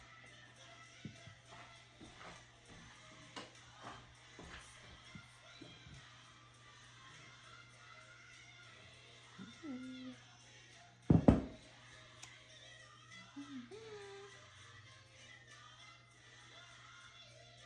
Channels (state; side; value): identical; both; correlation 1.00